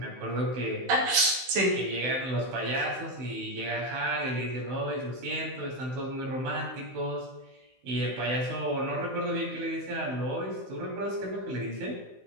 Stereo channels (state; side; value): late; left; 16 ms